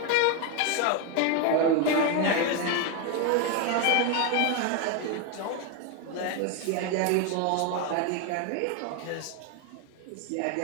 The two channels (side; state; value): both; different; correlation 0.01